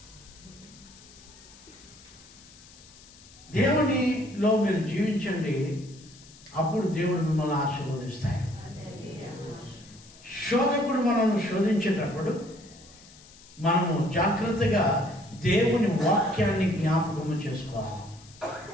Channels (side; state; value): left; noise; hiss, 22 dB below the sound